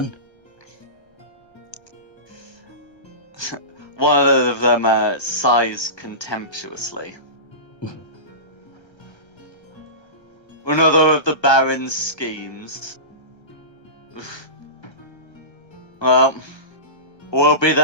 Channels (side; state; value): right; late; 1.3 ms